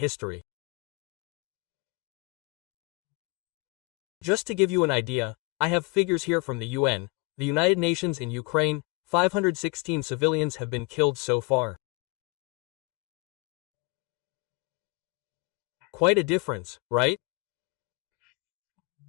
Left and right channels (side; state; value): right; quieter; 26.6 dB